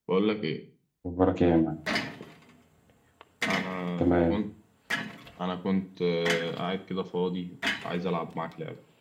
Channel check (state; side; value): identical; both; correlation 1.00